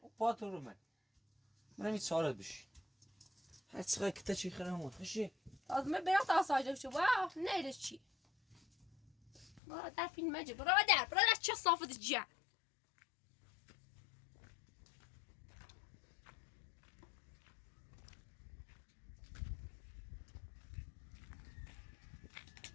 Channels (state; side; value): drops out; right; at 9.6 s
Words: بات ورو ما من ميت سؤال بش هات صغير كتاشي خلهم خشي از من برات آسایش شو واه نه چی برادر فیلم مجه برادر چه صافت جا